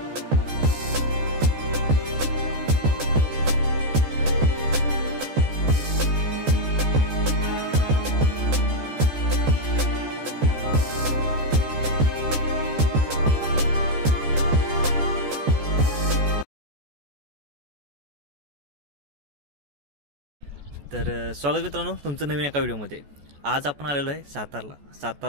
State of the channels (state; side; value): late; left; 14 ms